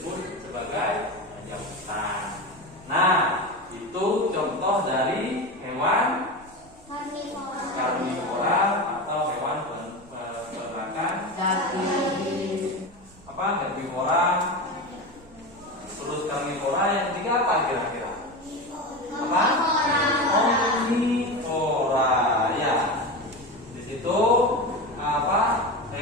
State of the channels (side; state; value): right; noise; rumble, 25 dB below the sound